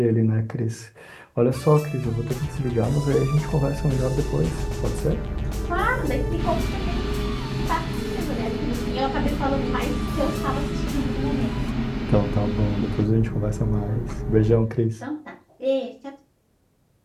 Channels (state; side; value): identical; both; correlation 1.00